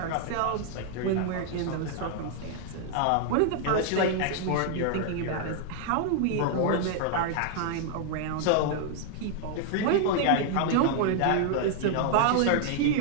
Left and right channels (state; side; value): different; both; correlation 0.00